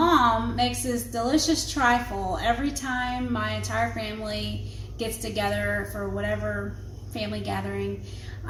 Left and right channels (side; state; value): both; identical; correlation 1.00